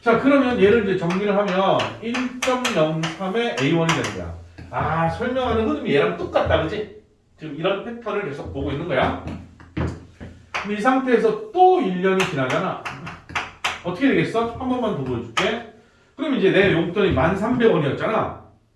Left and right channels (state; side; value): identical; both; correlation 1.00